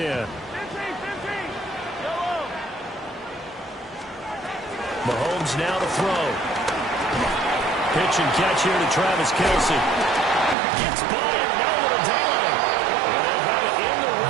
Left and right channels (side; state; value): left; drops out; at 10.6 s